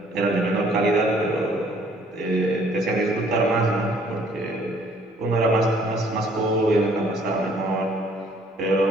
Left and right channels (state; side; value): normal; both; correlation 0.60